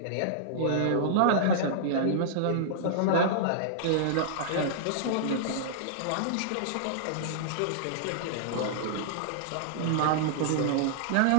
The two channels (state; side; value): different; both; correlation -0.02